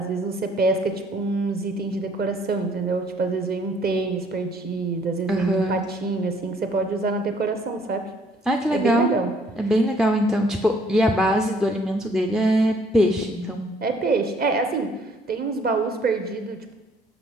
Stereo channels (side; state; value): both; normal; correlation 0.62